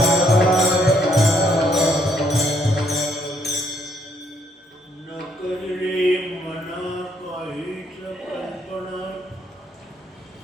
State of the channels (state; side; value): normal; both; correlation 0.70